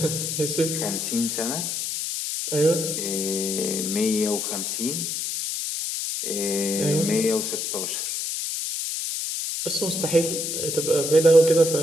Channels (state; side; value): noise; left; hiss, 2 dB below the sound